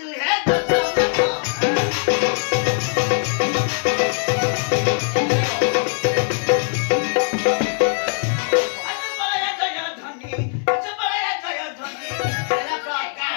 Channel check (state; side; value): silent; right; 65 dB below the other